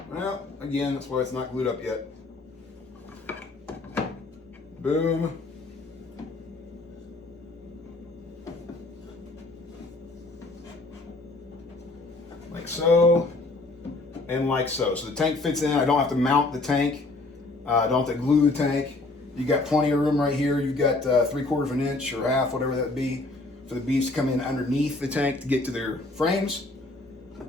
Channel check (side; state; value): right; quieter; 3.1 dB